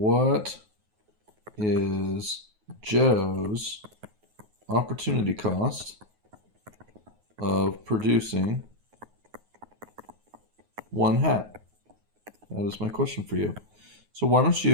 is Joe's opportunity cost of producing 1 hat? That is my question for you. So why don't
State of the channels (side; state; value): left; late; 9.4 ms